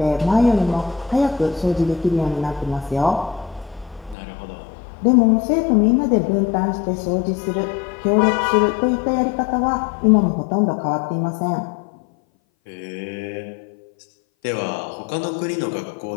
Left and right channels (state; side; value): drops out; right; at 4.2 s